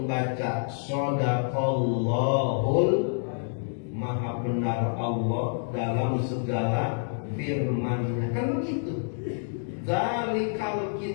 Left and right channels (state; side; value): silent; right; digital silence